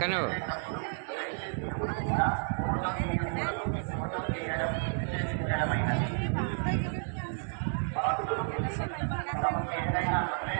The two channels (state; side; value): silent; left; 57 dB below the other